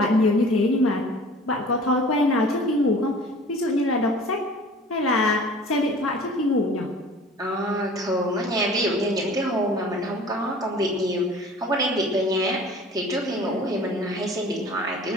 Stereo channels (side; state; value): both; normal; correlation 0.45